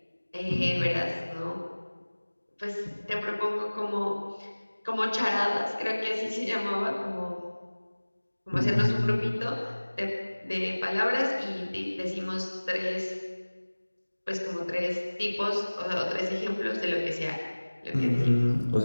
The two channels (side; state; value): both; inverted; correlation -1.00